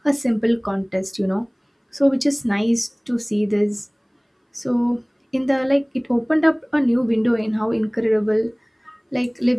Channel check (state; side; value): identical; both; correlation 1.00